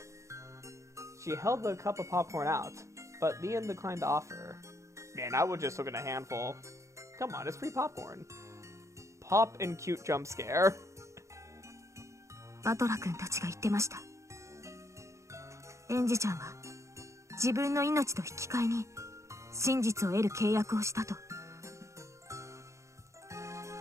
She held the cup of popcorn out, but Leon declined to offer. Man, I would just took in a handful. Come on, it's free popcorn. Pop and cute jump scare. バトラ君たちが言ってました。エンジちゃんは自分の命と引き換えに真実を得る契約をしたと。さ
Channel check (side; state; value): left; late; 0.14 ms